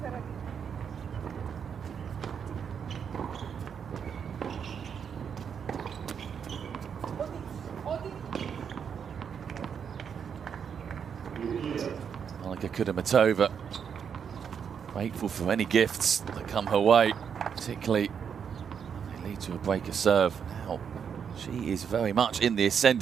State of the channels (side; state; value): left; quieter; 7.3 dB